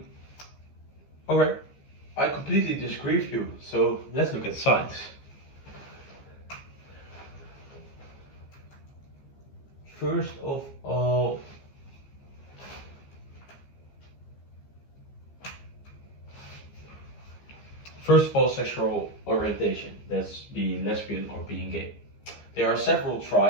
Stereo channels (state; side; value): late; right; 14 ms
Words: okay, I completely disagree with you. So let's look at science. First of all, sexual orientation. That's being lesbian or being gay. There are several